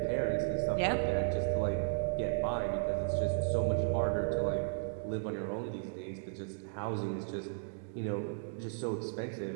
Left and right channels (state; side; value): silent; left; digital silence